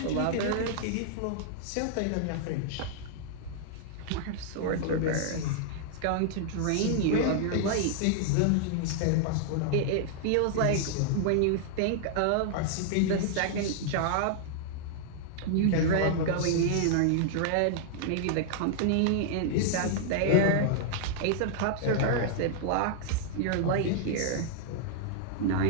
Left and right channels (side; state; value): both; different; correlation -0.01